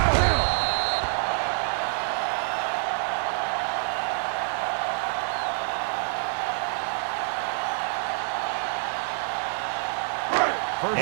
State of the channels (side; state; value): left; silent; 60 dB below the other